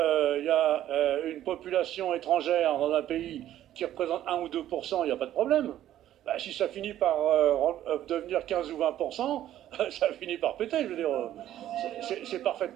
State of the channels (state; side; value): quieter; left; 12.4 dB